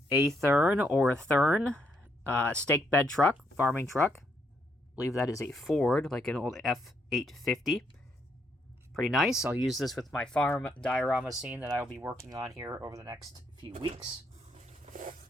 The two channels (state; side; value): normal; both; correlation 0.74